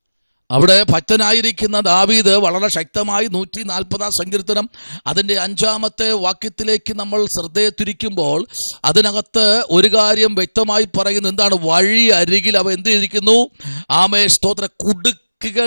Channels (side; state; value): both; inverted; correlation -1.00